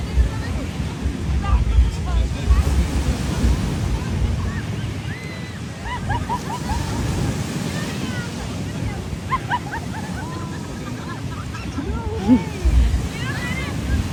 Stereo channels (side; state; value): both; identical; correlation 1.00